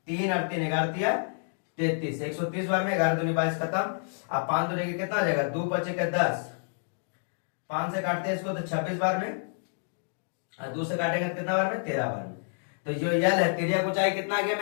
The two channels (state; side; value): silent; right; digital silence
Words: 3 और 3 11 33, 130 बार में 11 दूनी 22 खत्म। अब 5 दूनी के कितना आ जाएगा 2 बचे के 10, 5 से काटते हैं इसको तो 26 बार में, और 2 से काटेंगे तो कितना बार में 13 बार में। तो जो यल है तिर्यक ऊंचाई कितना आ गया